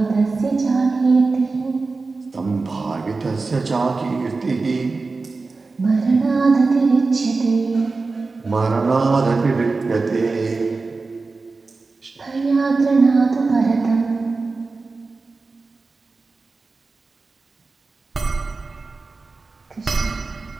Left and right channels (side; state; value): left; quieter; 3.9 dB